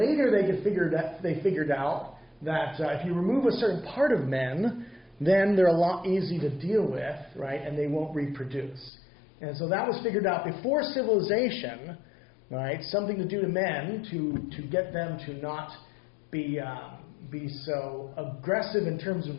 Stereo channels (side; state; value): right; drops out; at 8.9 s